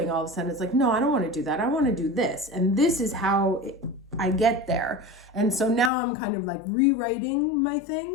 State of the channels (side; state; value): right; drops out; at 5.9 s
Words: all of a sudden. It's like, no, I don't want to do that. I want to do this. And this is how I get there. And so now I'm kind of like rewriting my